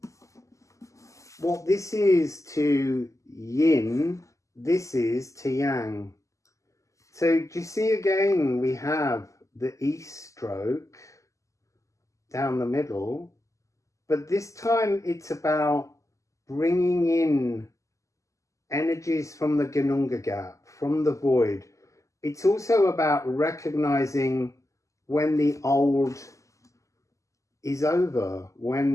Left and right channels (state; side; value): late; right; 0.16 ms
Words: what this is to yin, this is to yang. So do you see again we have the east stroke down the middle, but this time it's about bringing in energies from the Gununga gap, from the void. It's also about recognizing when the old is over,